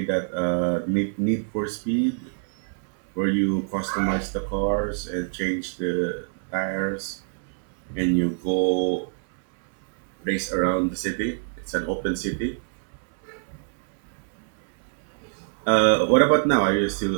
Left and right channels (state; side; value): silent; left; 61 dB below the other